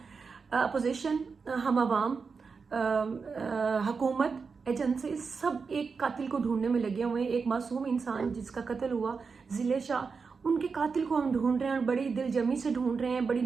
अपोजिशन, हम आवाम, हुकूमत, एजेंसी सब एक कातिल को ढूंढने में लगे हुए हैं। एक मासूम इंसान जिसका कत्ल हुआ, ज़िले शाह, उनके कातिल को हम ढूंढ रहे हैं और बड़ी दिलजमी से ढूंढ रहे हैं, बड़ी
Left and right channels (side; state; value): left; quieter; 5.1 dB